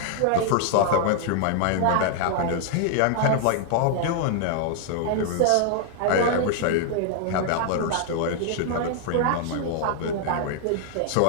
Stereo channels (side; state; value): both; different; correlation 0.00